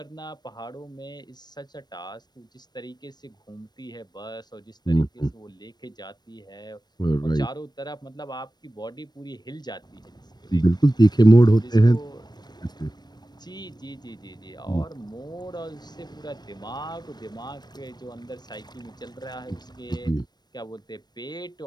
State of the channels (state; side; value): late; right; 0.20 ms